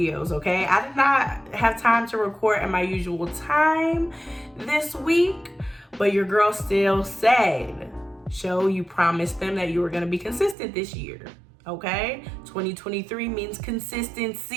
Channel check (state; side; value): drops out; left; at 10.6 s